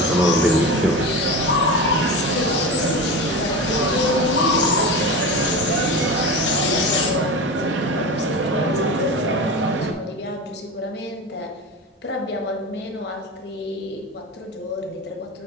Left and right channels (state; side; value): normal; both; correlation 0.26